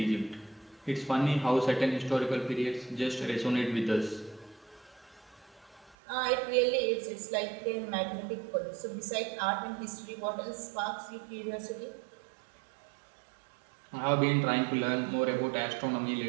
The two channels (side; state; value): left; drops out; at 6.0 s